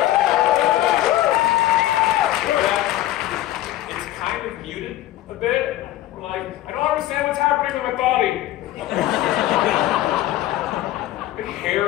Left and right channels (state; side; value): quieter; right; 14.7 dB